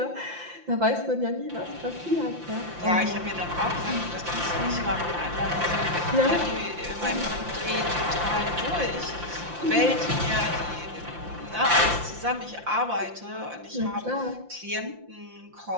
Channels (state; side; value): late; left; 5.8 ms